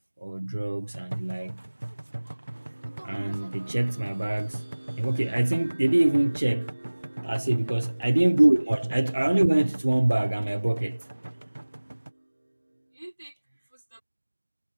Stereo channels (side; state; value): both; inverted; correlation -1.00